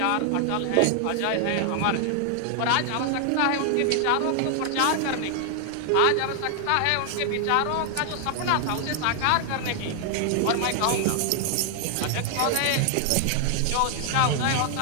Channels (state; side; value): different; both; correlation 0.00